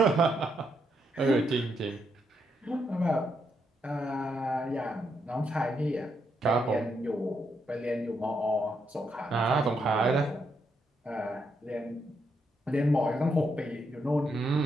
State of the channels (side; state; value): both; normal; correlation 0.79